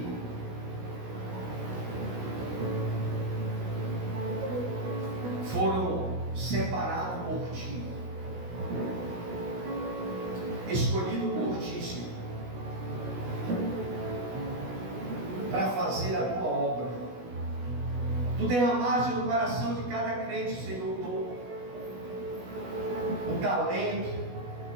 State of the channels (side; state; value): left; late; 16 ms